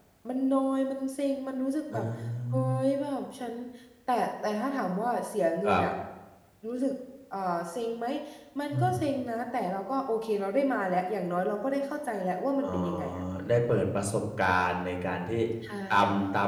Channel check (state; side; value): identical; both; correlation 1.00